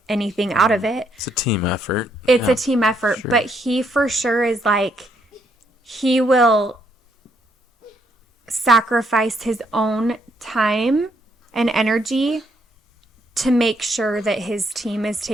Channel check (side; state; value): both; normal; correlation 0.72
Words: anything out of it. It's a team effort. It's a team effort, sure. But he for sure is like, he will sacrifice his own time and energy to make sure that his team is